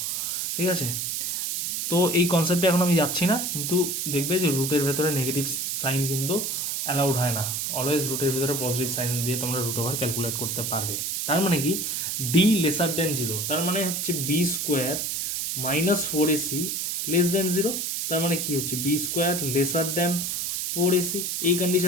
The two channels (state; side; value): noise; right; hiss, 1 dB below the sound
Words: ঠিক আছে। তো এই কনসেপ্টে এখন আমি যাচ্ছি না, কিন্তু দেখবে যে রুটের ভেতরে নেগেটিভ সাইন কিন্তু অ্যালাউড হয় না। অলওয়েজ রুটের ভেতরে পজিটিভ সাইন দিয়ে তোমরা রুট ওভার ক্যালকুলেট করতে পারবে। তার মানে কি ডি লেসার দেন 0, তার মানে হচ্ছে B square -4ac less than 0। তার মানে কি হচ্ছে বি স্কোয়ার লেসার দেন 4ac, এই